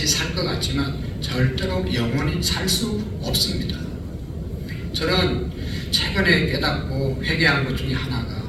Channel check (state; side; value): identical; both; correlation 1.00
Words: 살 것 같지만 절대로 영원히 살 수 없습니다. 저는 최근에 깨닫고 회개한 것 중에 하나가